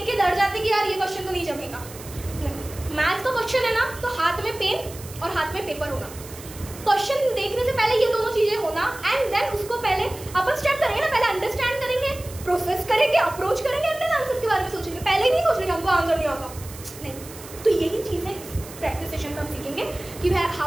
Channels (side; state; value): right; noise; hiss, 16 dB below the sound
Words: के डर जाते कि यार ये क्वेश्चन तो नहीं जमेगा। मैथ्स का क्वेश्चन है ना, तो हाथ में पेन और हाथ में पेपर होना, क्वेश्चन देखने से पहले ये दोनों चीजें होना, एंड देन उसको पहले अपन स्टेप करेंगे ना, पहले अंडरस्टैंड करेंगे, प्रोसेस करेंगे, अप्रोच करेंगे, एंड देन आंसर के बारे में सोचेंगे। पहले ही नहीं सोच रहे हमको आंसर नहीं आता, नहीं। तो यही चीजें प्रैक्टिस सेशन में हम सीखेंगे कि